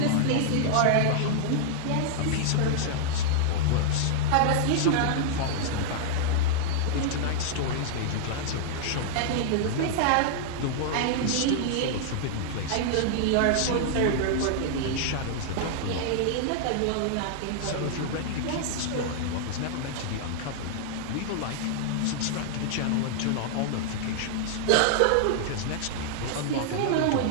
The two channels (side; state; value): both; different; correlation -0.01